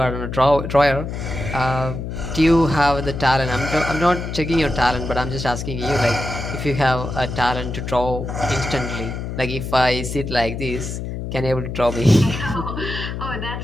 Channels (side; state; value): left; noise; hum, 6 dB below the sound